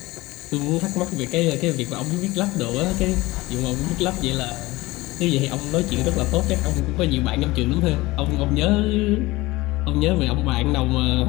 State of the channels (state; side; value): quieter; right; 20.2 dB